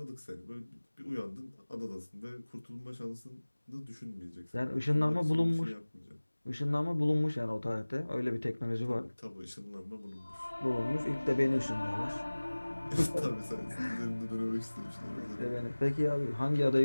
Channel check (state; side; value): inverted; both; correlation -1.00